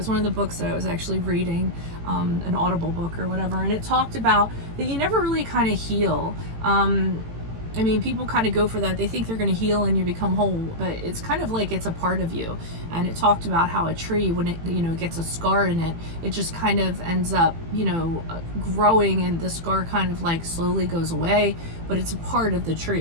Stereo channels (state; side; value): late; left; 18 ms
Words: one of the books that I was actually reading, an Audible book or whatever, and it talked about that you never really kind of heal. I mean, people kind of go for that. They think they're going to heal and you become whole, but it's kind of like it's a part of you. And it talked about how a tree, when it, you know, gets a scar in it, it just kind of ends up, you know, growing, and the scar kind of like slowly goes away, but it's a part of the